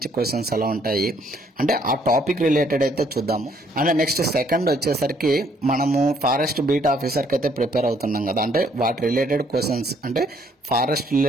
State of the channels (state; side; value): normal; both; correlation 0.66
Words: క్వశ్చన్స్ ఎలా ఉంటాయి అంటే ఆ టాపిక్ రిలేటెడ్ అయితే చూద్దాము. అండ్ నెక్స్ట్ సెకండ్ వచ్చేసరికి మనము ఫారెస్ట్ బీట్ ఆఫీసర్కి అయితే ప్రిపేర్ అవుతున్నాం కదా, అంటే వాటి రిలేటెడ్ క్వశ్చన్స్ అంటే ఫారెస్ట్